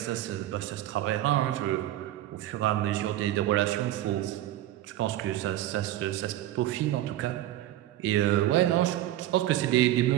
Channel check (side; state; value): left; quieter; 13.8 dB